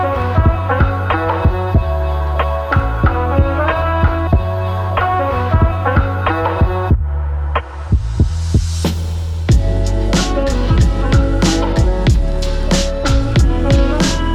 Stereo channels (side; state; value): both; identical; correlation 1.00